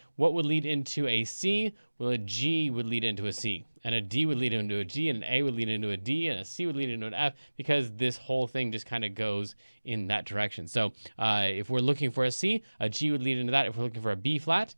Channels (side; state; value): both; inverted; correlation -1.00